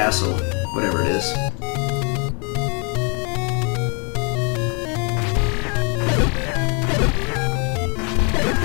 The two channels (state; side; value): quieter; right; 35.6 dB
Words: whatever it is.